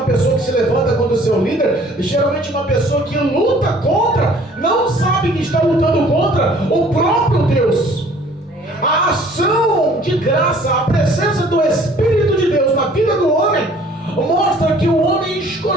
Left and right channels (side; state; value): both; normal; correlation 0.54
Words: pessoa que se levanta contra o seu líder, geralmente uma pessoa que luta contra, não sabe que está lutando contra o próprio Deus. A ação de graça, a presença do Espírito de Deus na vida do homem, mostra que o homem